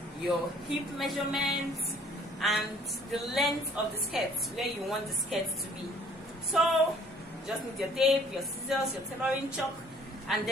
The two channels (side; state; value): both; normal; correlation 0.57